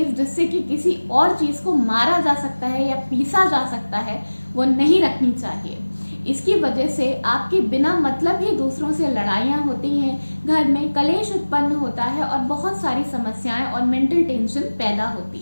जिससे कि किसी और चीज को मारा जा सकता है या पीसा जा सकता है, वो नहीं रखनी चाहिए। इसकी वजह से आपकी बिना मतलब ही दूसरों से लड़ाइयाँ होती हैं, घर में कलेश उत्पन्न होता है और बहुत सारी समस्याएं और मेंटल टेंशन पैदा होती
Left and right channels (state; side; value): inverted; both; correlation -1.00